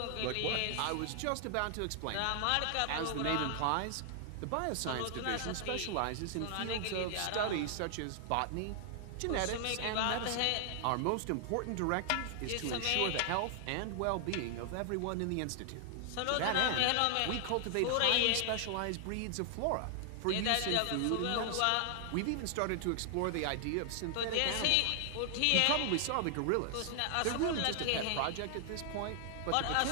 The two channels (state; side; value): different; both; correlation 0.00